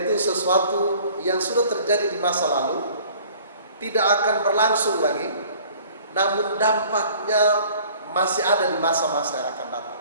sesuatu yang sudah terjadi di masa lalu, tidak akan berlangsung lagi, namun dampaknya masih ada di masa-masa yang akan datang.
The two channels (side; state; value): both; inverted; correlation -0.51